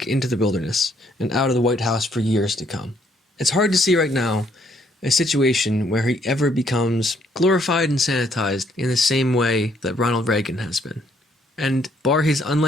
into the wilderness and out of the White House for years to come. It's hard to see right now a situation where he ever becomes glorified and sanitized in the same way that Ronald Reagan has been. And bar his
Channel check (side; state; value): both; normal; correlation 0.68